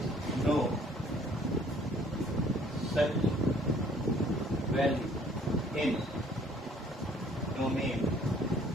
no such value in domain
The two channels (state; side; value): normal; both; correlation 0.58